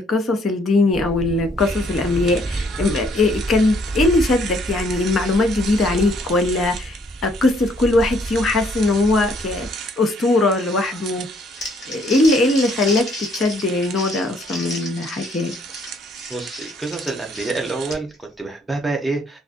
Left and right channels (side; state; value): both; normal; correlation 0.66